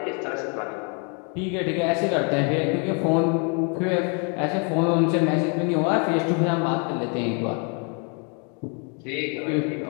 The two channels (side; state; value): right; quieter; 37.6 dB